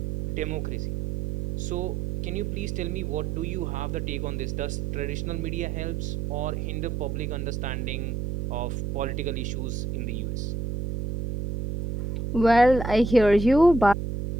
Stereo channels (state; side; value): noise; right; hum, 3 dB below the sound